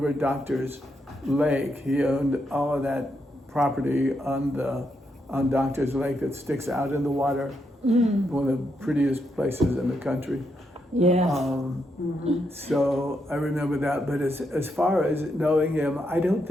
Doctor's Lake. He owned all of that property on Doctor's Lake that sticks out in the water. One of the prettiest places in the country. Yeah. So I remember that, but as far as knowing him, I don't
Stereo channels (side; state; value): both; normal; correlation 0.80